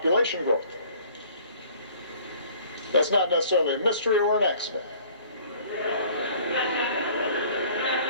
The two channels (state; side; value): inverted; both; correlation -0.52